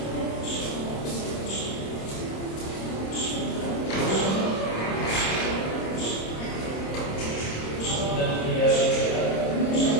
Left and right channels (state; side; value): late; right; 26 ms